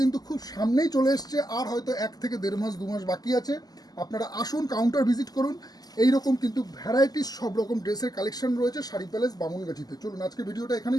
খুব সামনেই চলে এসছে, আর হয়তো 1 থেকে 1.5 মাস 2 মাস বাকি আছে। আপনারা আসুন, কাউন্টার ভিজিট করুন। এই রকম কিন্তু ভ্যারাইটিস সব রকম ড্রেসের কালেকশন রয়েছে শাড়ি প্যালেস বামুনগাছিতে। চলুন আজকে ভিডিওটা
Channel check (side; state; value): right; late; 0.19 ms